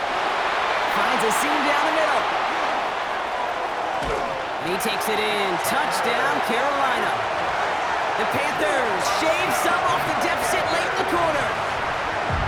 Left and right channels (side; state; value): both; identical; correlation 1.00